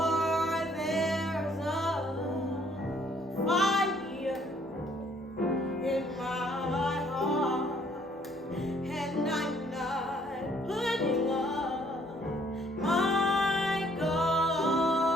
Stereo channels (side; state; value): both; normal; correlation 0.63